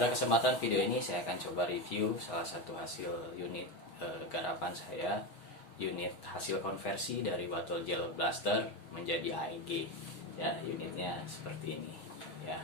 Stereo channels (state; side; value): late; right; 6.3 ms